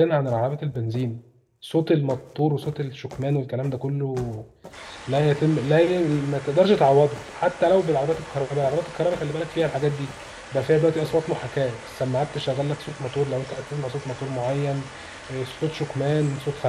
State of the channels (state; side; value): identical; both; correlation 1.00